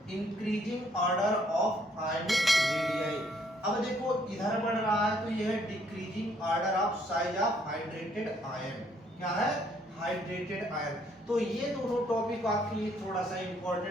increasing order of ionic radii. अब देखो इधर बढ़ रहा है तो ये है decreasing order of size of hydrated ion. क्या है, हाइड्रेटेड आयन। तो ये दोनों टॉपिक आपके लिए थोड़ा सा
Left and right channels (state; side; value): normal; both; correlation 0.66